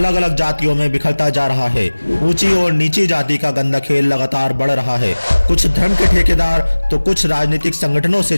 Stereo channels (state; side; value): inverted; both; correlation -1.00